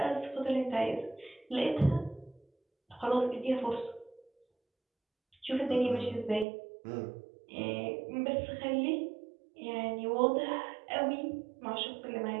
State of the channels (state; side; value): drops out; left; at 6.5 s